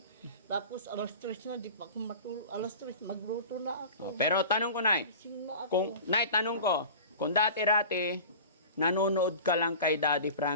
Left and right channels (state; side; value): inverted; both; correlation -0.38